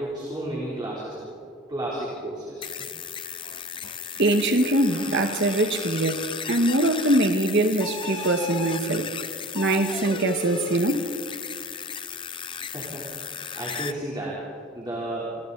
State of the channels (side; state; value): both; normal; correlation 0.41